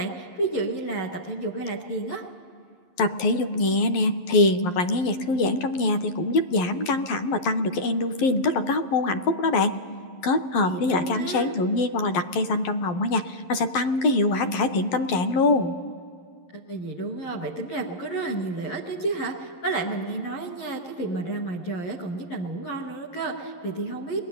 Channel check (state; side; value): late; right; 11 ms